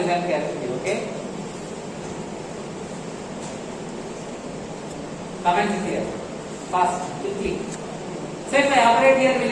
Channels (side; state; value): both; identical; correlation 1.00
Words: carefully, okay? Comments here. Fast, quickly. So if I operate here, will